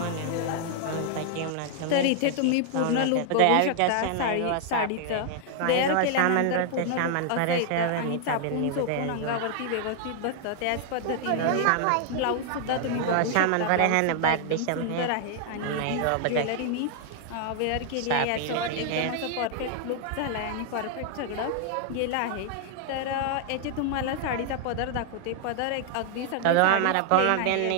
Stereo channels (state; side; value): different; both; correlation 0.00